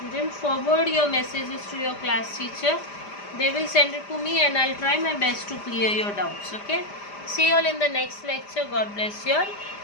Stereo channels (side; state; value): right; late; 5.0 ms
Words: forward your messages to your class teacher. They will send it to me and I'll try my best to clear your doubts. Okay. See you all in the next lecture. God bless you all.